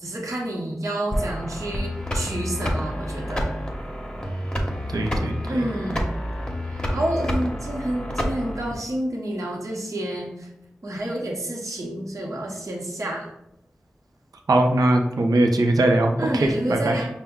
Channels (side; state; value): both; normal; correlation 0.89